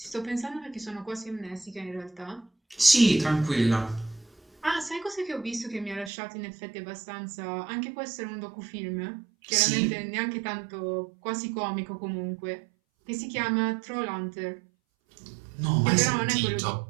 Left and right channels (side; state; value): left; drops out; at 6.1 s